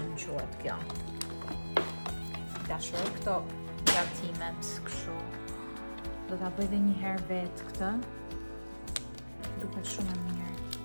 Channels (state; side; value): inverted; both; correlation -1.00